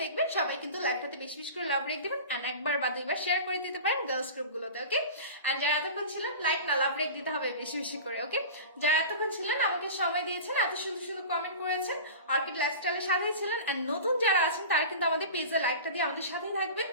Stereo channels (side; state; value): both; inverted; correlation -0.33